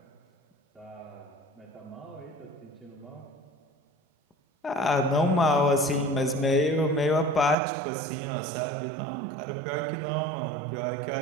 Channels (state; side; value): drops out; left; at 7.6 s